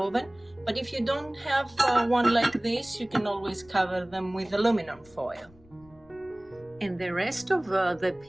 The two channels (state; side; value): noise; left; rumble, 28 dB below the sound